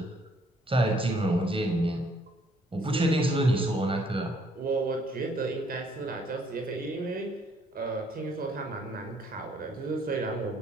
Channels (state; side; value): normal; both; correlation 0.65